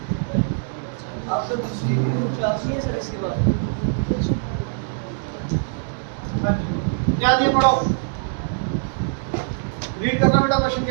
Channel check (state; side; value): silent; left; digital silence